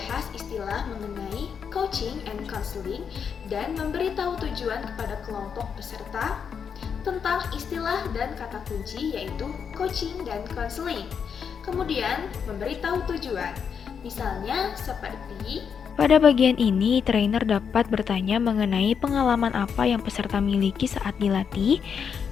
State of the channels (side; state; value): right; quieter; 6.9 dB